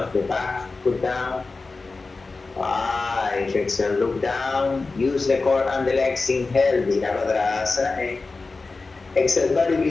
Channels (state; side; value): quieter; right; 3.8 dB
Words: the back foot down. 5, exhale, look down. Use the core and the legs. Inhale, Virabhadrasana. Exhale,